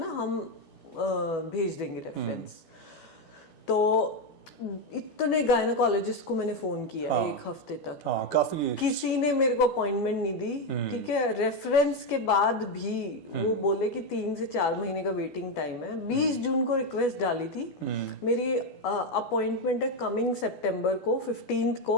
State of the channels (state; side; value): late; right; 12 ms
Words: हम भेज देंगे रेफरेंस। तो इतने गायनाकोलॉजिस्ट को मैंने फोन किया एक हफ्ते तक। हाँ, काफी। किसी ने मेरे को अपॉइंटमेंट नहीं दी। ठीक है, रेफरेंस के बाद भी वो बोले कि 3 से 4 महीने का वेटिंग टाइम है। 20 जून को रिक्वेस्ट डाली थी। मेरी अपॉइंटमेंट है कमिंग सितंबर को, 15th